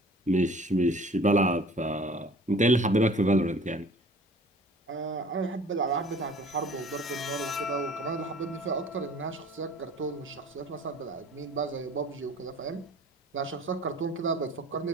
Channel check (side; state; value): both; normal; correlation 0.48